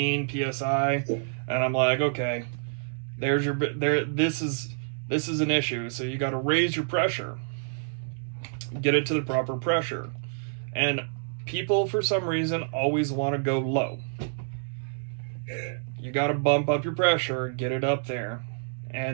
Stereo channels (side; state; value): left; silent; digital silence